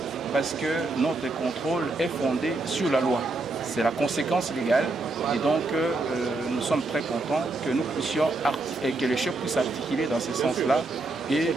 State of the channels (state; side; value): quieter; left; 3.1 dB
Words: parce que notre contrôle est fondé sur la loi. C'est la conséquence légale et donc nous sommes très contents que nous puissions et que le chef puisse articuler dans ce sens-là et